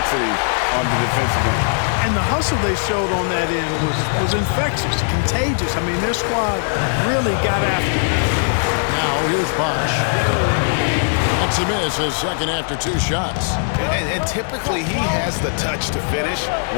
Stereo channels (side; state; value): right; silent; digital silence